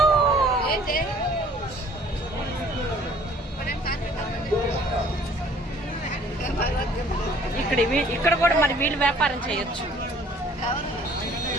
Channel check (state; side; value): normal; both; correlation 0.55